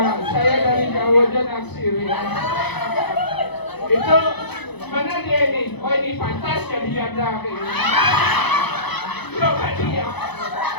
saya dari jauh aja naksir ya. Itu mana dia ini? Oh ini pantas jadi janda kayak gini. Coba dia.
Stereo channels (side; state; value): right; late; 0.99 ms